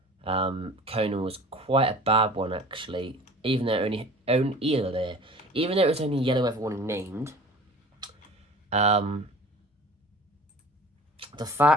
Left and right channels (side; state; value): both; normal; correlation 0.43